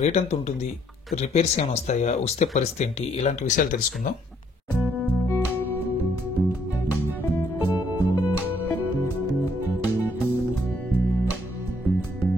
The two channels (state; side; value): normal; both; correlation 0.68